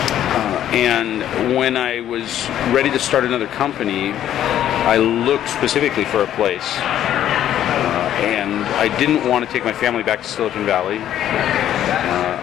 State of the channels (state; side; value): quieter; right; 11.3 dB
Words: And when I was ready to start another company, I looked specifically for a place. And I didn't want to take my family back to Silicon Valley.